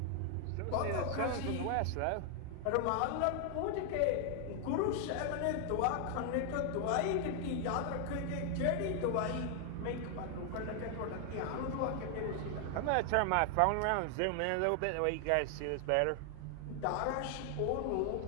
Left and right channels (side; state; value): both; different; correlation 0.00